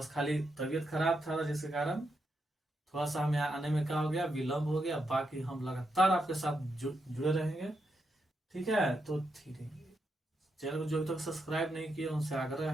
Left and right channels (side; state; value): both; normal; correlation 0.83